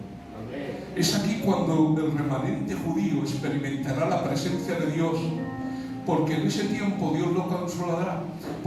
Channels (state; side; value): identical; both; correlation 1.00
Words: Es aquí cuando el remanente judío experimentará la presencia de Dios, porque en ese tiempo Dios lo consolará.